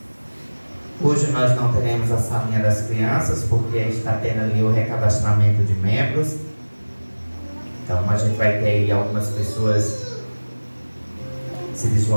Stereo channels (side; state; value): both; inverted; correlation -1.00